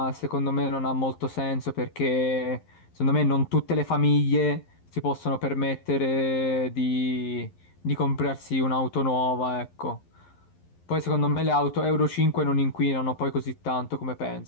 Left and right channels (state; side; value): late; right; 11 ms